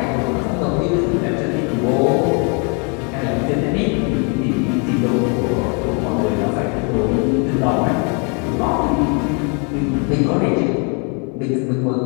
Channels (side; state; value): right; quieter; 36.0 dB